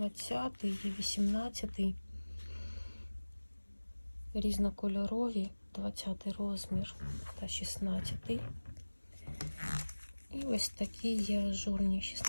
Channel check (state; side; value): inverted; both; correlation -1.00